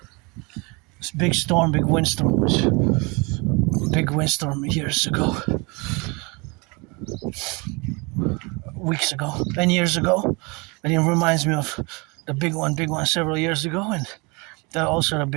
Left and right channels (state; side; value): quieter; left; 28.4 dB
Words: This big windstorm big windstorm years ago, weeks ago, and years ago, and it reminds me of the big one several years ago, and that also the